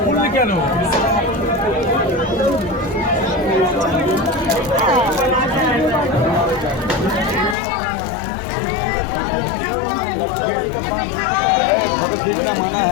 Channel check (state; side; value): drops out; right; at 7.6 s